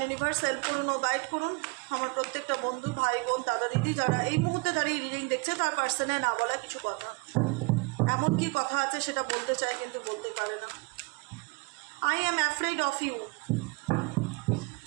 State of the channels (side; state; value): left; quieter; 28.1 dB